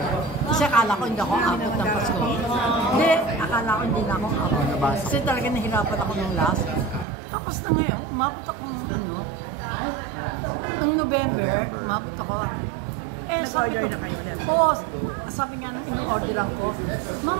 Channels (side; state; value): left; drops out; at 7.1 s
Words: Kasi akala ko hindi ako abot ng Pasko. Hindi, akala ko hindi na ako abot. Kasi talaga nahirapan ako ng last. Tapos na ngayon, umabot ako ng November, umabot ako. Sabi nga nung in-orderan ko, Ma'am,